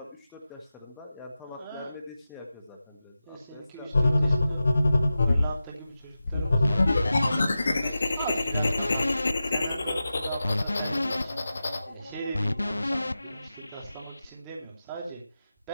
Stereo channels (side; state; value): both; inverted; correlation -0.93